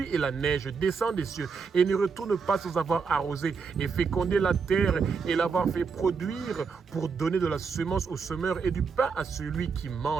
et la neige, descend des cieux et ne retourne pas sans avoir arrosé et fécondé la terre et l'avoir fait produire pour donner de la semence au semeur et du pain à celui qui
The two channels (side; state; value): left; quieter; 5.4 dB